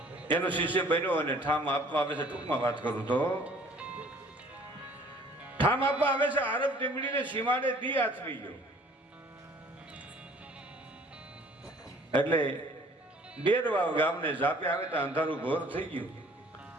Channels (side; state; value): both; normal; correlation 0.54